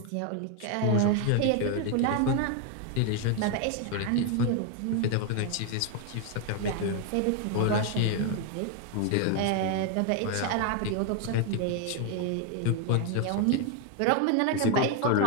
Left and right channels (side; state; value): both; different; correlation 0.01